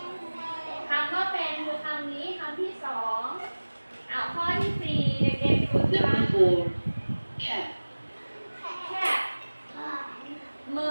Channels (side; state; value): both; inverted; correlation -1.00